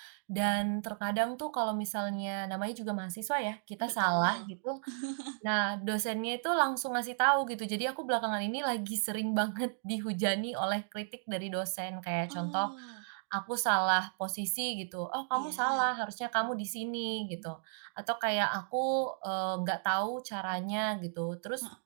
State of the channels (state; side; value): silent; left; digital silence